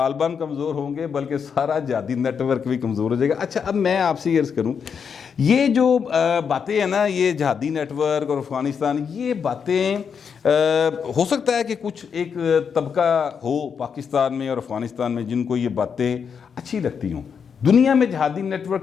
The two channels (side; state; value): right; quieter; 6.7 dB